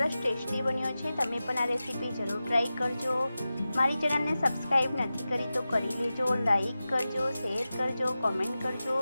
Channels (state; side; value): inverted; both; correlation -0.94